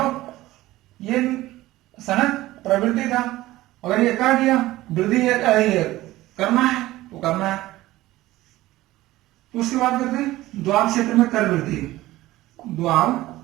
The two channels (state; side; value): quieter; left; 16.9 dB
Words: ये सनक प्रवृत्ति था, अगर ये कह दिया वृद्धि करना है तो करना है। तो उसके बाद करते हैं द्वार क्षेत्र में कर वृद्धि। द्वार